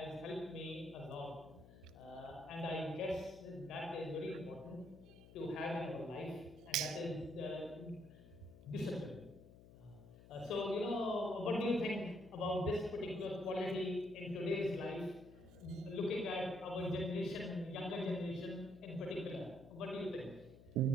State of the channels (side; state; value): left; noise; hum, 19 dB below the sound